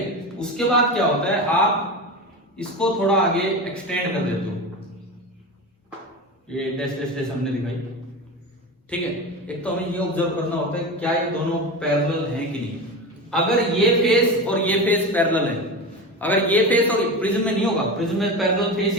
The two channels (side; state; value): both; normal; correlation 0.25